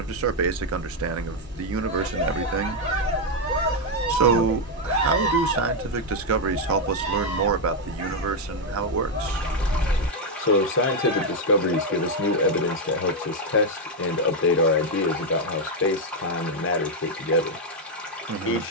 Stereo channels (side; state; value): both; normal; correlation 0.02